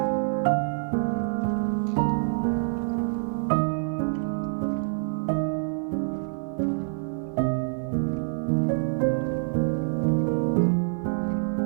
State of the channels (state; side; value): silent; left; 59 dB below the other